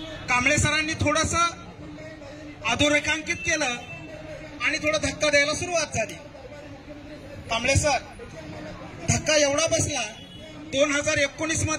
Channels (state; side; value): identical; both; correlation 1.00